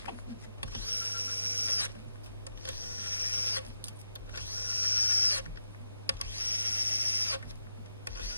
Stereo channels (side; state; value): both; inverted; correlation -0.89